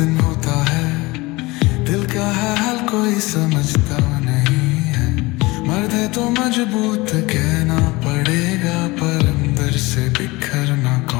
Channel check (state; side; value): quieter; right; 22.4 dB